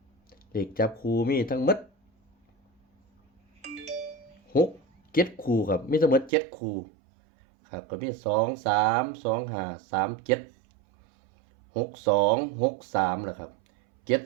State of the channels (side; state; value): left; drops out; at 6.3 s